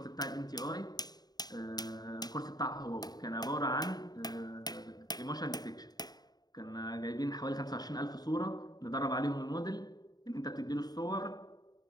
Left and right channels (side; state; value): right; late; 0.19 ms